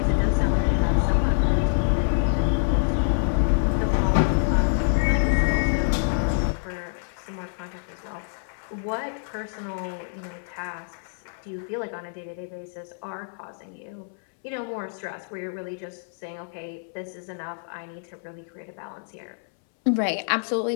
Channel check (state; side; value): silent; right; 61 dB below the other